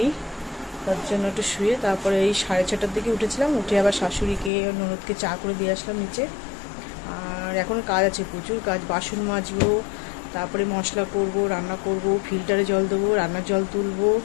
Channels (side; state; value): right; drops out; at 4.5 s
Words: তার জন্য একটু শুয়ে তারপরে এই 6:30টার দিকে উঠেছিলাম। উঠে আবার শাশুড়িকে ননদকে চা করে দিয়ে আসলাম নিচে। আর এখন কাজ আছে, প্রচুর কাজ, বাসন মাজবো, তারপরে মশলা করব, রান্না করব, ফিল্টারে জল দেবো, রান্নার জল তুলবো,